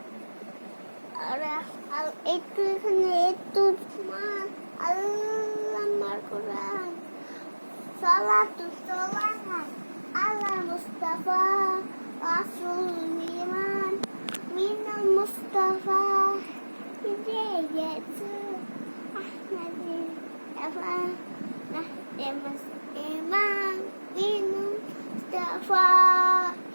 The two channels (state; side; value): inverted; both; correlation -1.00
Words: একটু এখানে একটু আল্লাহর কোরআন সালাতু সালাম আলা মুস্তাফা রাসূল ইমান মিনাল মুস্তাফা হিদায়াতু আহমাদি আফা নাহদামাস ইমান মিনাল Mustafa